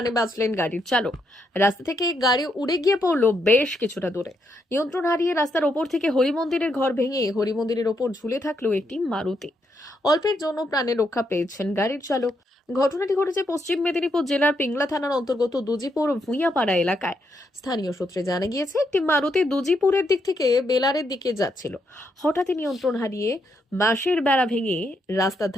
বাঁচলেন গাড়ির চালক। রাস্তা থেকে গাড়ি উড়ে গিয়ে পড়লো বেশ কিছুটা দূরে। নিয়ন্ত্রণ হারিয়ে রাস্তার ওপর থেকে হরিমন্দিরের ঘর ভেঙে হরিমন্দিরের ওপর ঝুলে থাকলো একটি মারুতি। অল্পের জন্য প্রাণে রক্ষা পেয়েছেন গাড়ির চালক। ঘটনাটি ঘটেছে পশ্চিম মেদিনীপুর জেলার পিংলা থানার অন্তর্গত দুজিপুর ভুঁইয়াপাড়া এলাকায়। স্থানীয় সূত্রে জানা গিয়েছে, একটি মারুতি দুজিপুরের দিক থেকে বেলারের দিকে যাচ্ছিল। হঠাৎই নিয়ন্ত্রণ হারিয়ে বাঁশের বেড়া ভেঙে রাস্তার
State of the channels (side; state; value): both; normal; correlation 0.78